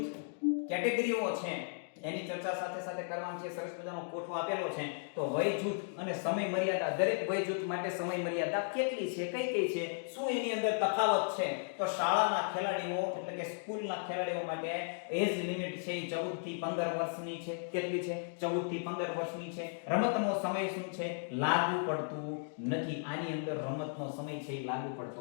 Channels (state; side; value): silent; right; digital silence